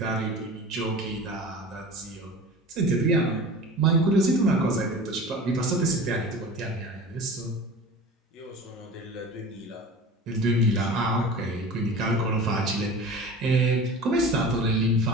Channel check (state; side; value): normal; both; correlation 0.37